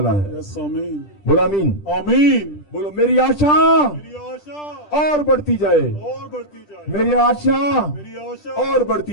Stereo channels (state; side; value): late; right; 10 ms